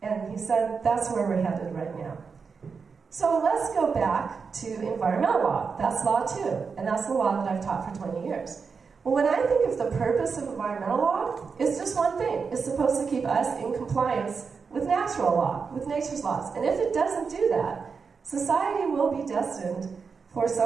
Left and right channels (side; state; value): left; quieter; 5.4 dB